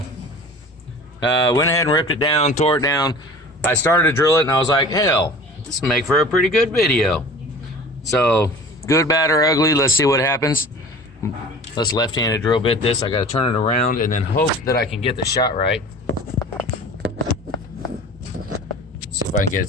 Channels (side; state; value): both; normal; correlation 0.41